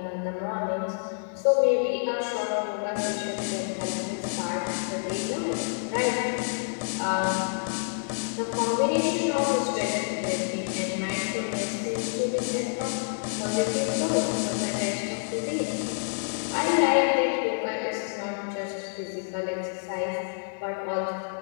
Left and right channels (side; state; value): right; silent; 58 dB below the other